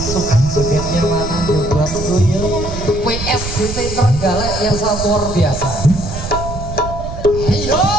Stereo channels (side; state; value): right; noise; rumble, 7 dB below the sound